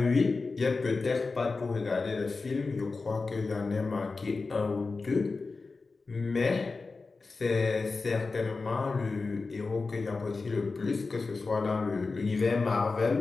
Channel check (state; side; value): quieter; right; 4.0 dB